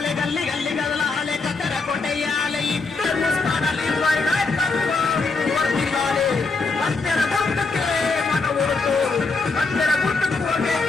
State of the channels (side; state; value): right; quieter; 4.1 dB